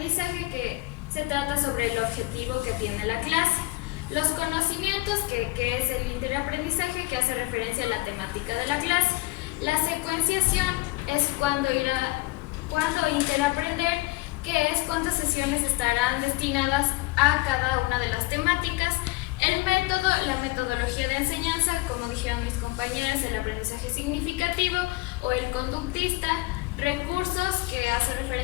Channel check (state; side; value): quieter; right; 21.7 dB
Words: que se trata sobre el objetivo que tiene la clase. Los conocimientos, que es el interaprendizaje, que hace referencia a la temática de la clase. La secuenciación es cuando interaprender, que es cuántas sesiones estarán destinadas a cada una de las temáticas. El método, la metodología de enseñanza, como dijeron mis compañeros, el aprendizaje significativo o el conductista. Recursos, que hace